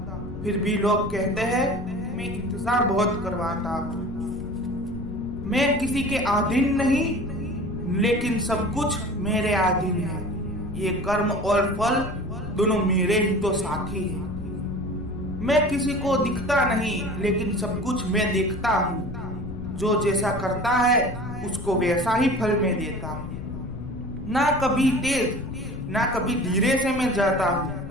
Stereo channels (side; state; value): left; noise; rumble, 10 dB below the sound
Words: फिर भी लोग कहते हैं मैं इंतजार बहुत करवाता हूँ। मैं किसी के अधीन नहीं लेकिन सब कुछ मेरे अधीन है। ये कर्म और फल दोनों मेरे ही तो साथी हैं। मैं किसी को दिखता नहीं लेकिन सब कुछ मैं देखता हूँ। जो जैसा करता है उसको वैसा ही फल मैं देता हूँ। ना कभी तेज ना कभी धीरे से मैं जाता